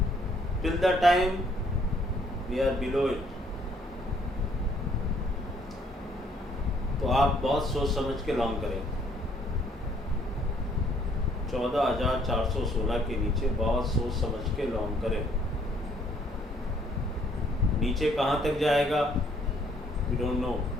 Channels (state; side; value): normal; both; correlation 0.65